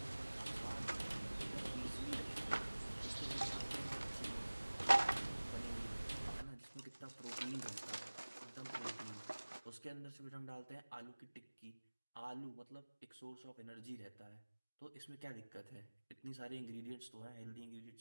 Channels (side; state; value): both; inverted; correlation -1.00